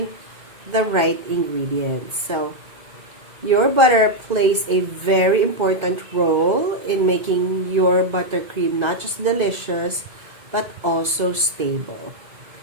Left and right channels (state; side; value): late; left; 2.0 ms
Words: the right ingredients. So, your butter plays a very important role in making your buttercream not just delicious, but also stable.